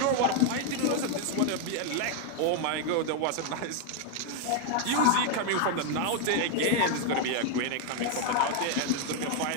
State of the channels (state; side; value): different; both; correlation 0.00